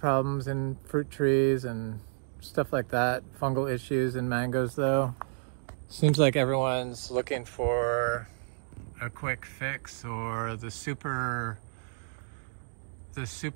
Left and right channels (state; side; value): silent; left; digital silence